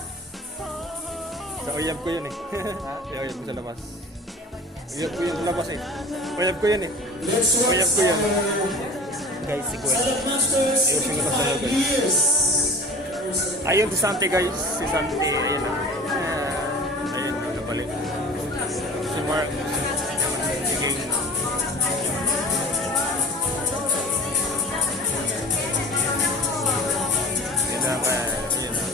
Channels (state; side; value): normal; both; correlation 0.40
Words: Sa uyab ko yun eh. Sa uyab ko sa labas. Uyab ko yun sa labas eh. Uyab ko yun eh. Uyab ko yun. Guys, si Gwen. Ayun siyang labas na guys. Ayun si Sante guys. Si Sante. Ayun na. Ayun, nabalik. Si Mark. Si King.